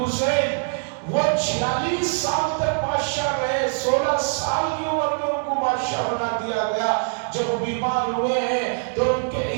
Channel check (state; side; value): silent; left; digital silence